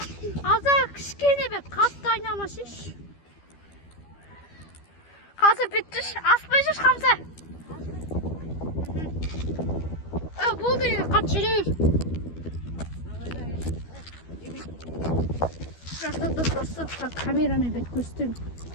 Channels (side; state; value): right; late; 12 ms